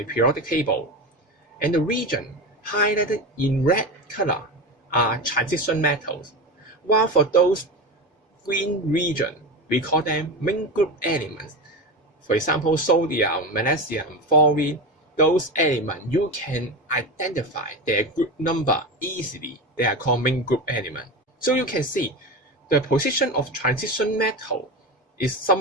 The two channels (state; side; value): normal; both; correlation 0.22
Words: periodic table, and the region highlighted in red color are transition metals, while for those green region, we call them main group elements. For example, sodium, magnesium, fluorine, those elements you can identify their group number easily. They are called main group elements. So you can see the position of transition metal is